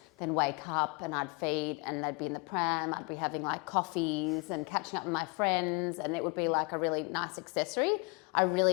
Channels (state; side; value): quieter; right; 29.2 dB